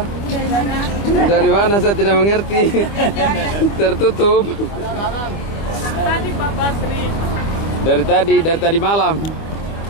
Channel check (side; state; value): right; late; 25 ms